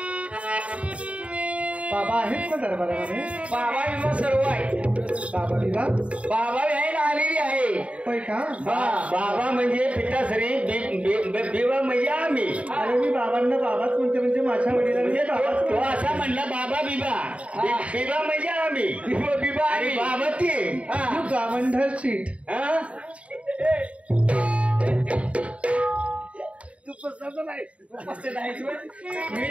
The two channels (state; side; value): late; left; 0.064 ms